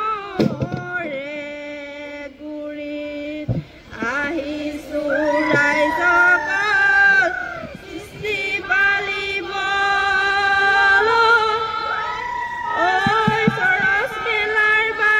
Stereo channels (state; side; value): identical; both; correlation 1.00